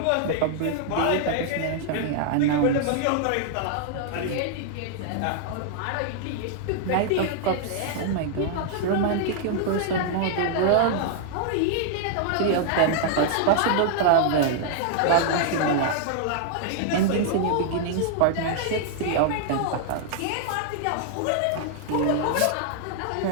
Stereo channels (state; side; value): different; both; correlation -0.01